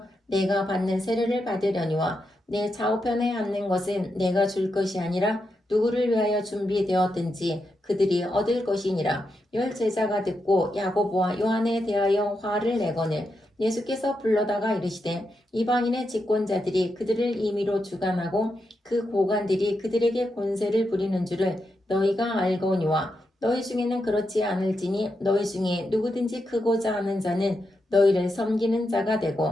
내가 받는 세례를 받으려니와 내 좌우편에 앉는 것은 내가 줄 것이 아니라 누구를 위하여 준비되었든지 그들이 얻을 것이니라. 10 제자가 듣고 야고보와 요한에 대하여 화를 내거늘 예수께서 불러다가 이르시되 이방인의 집권자들이 그들을 임의로 주관하고 그 고관들이 그들에게 권세를 부리는 줄을 너희가 알거니와 너희 중에는 그렇지 않을지니 너희 중에 누구든지 크고자 하는 자는 너희를 섬기는 자가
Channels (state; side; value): normal; both; correlation 0.85